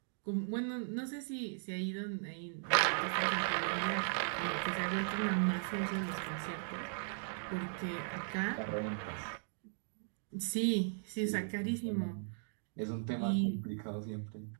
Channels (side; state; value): left; silent; digital silence